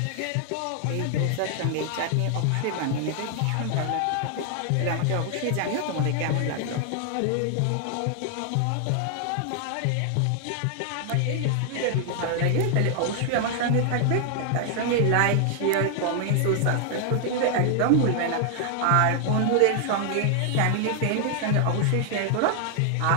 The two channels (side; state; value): both; different; correlation 0.00